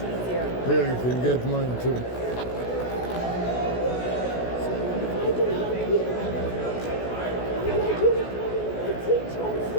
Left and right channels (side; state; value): right; late; 16 ms